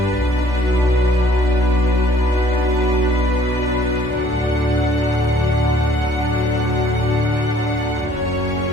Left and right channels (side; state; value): both; normal; correlation 0.58